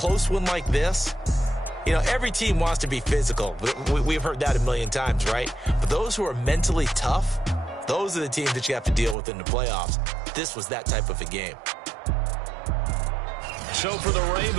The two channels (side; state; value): left; drops out; at 9.2 s